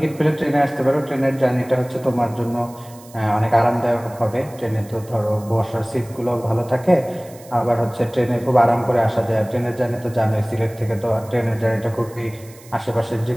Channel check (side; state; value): right; noise; hiss, 23 dB below the sound